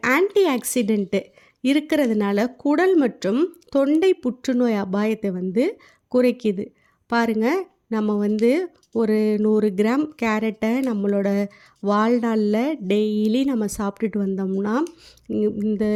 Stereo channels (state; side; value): identical; both; correlation 1.00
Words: ஆன்டி ஆக்சிடென்ட்டு இருக்கிறதுனால குடல் மற்றும் தொண்டை புற்றுநோய் அபாயத்தை வந்து குறைக்குது. பாருங்கள், நம்ம வந்து ஒரு 100 கிராம் கேரட்டை நம்மளோட வாழ்நாளில் டெய்லி நம்ம சாப்பிட்டுட்டு வந்தோம்னா இந்த